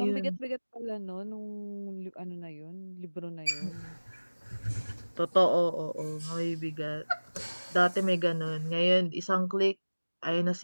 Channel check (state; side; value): inverted; both; correlation -1.00